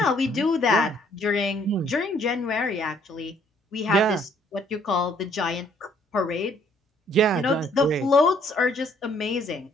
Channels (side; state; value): both; normal; correlation 0.64